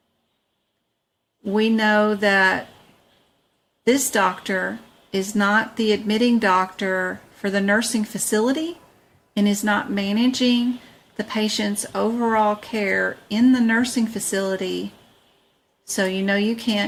We know that this doctor is not the admitting doctor for the nursing facility and is not managing the patient's overall care in the nursing facility. So you know you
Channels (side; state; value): both; identical; correlation 1.00